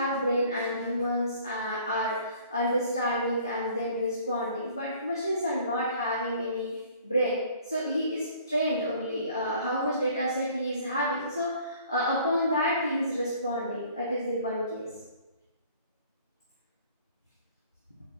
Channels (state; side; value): inverted; both; correlation -0.54